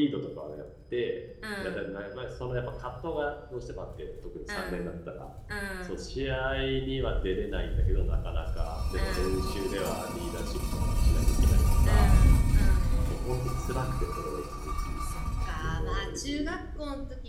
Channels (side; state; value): both; identical; correlation 1.00